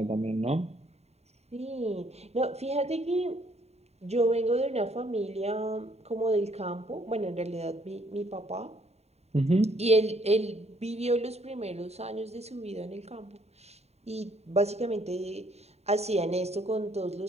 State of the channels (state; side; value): late; left; 0.31 ms